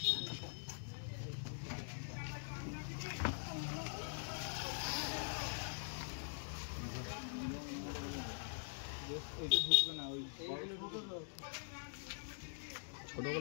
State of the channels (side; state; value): right; silent; digital silence